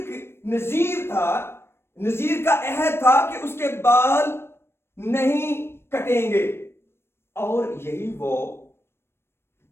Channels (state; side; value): late; right; 0.12 ms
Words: نذیر تھا, نذیر کا عہد تھا کہ اس کے بال نہیں کٹیں گے, اور یہی وہ